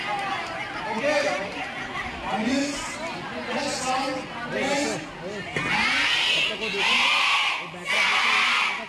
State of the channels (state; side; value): identical; both; correlation 1.00